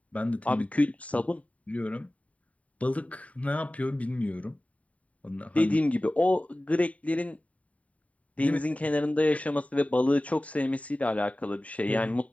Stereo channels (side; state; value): right; late; 0.068 ms